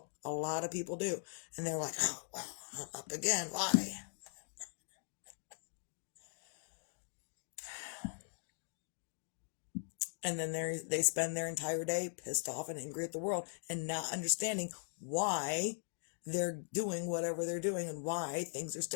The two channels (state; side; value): silent; right; digital silence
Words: A lot of people do. And they're like, oh, well, I'm up again. Why? And then they spend their entire day pissed off and angry at the world and not understanding why they're doing whatever they're doing and why things are